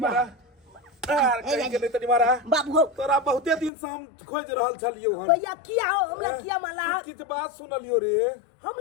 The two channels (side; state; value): right; drops out; at 3.7 s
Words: मारा यार कहीं गेले तनी मारा बाबू तोरा बहुते दिन से हम खोज रहल छलियो हम भैया किया हो हमरा किया माला किछ बात सुनलियो रे